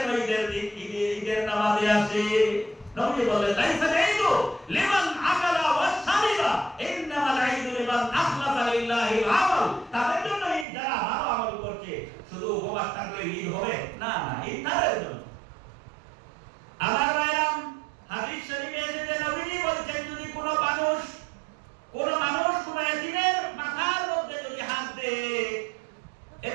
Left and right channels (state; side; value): drops out; left; at 10.7 s